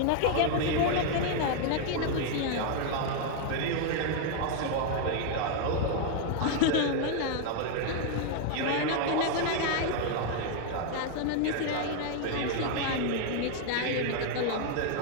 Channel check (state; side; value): different; both; correlation 0.00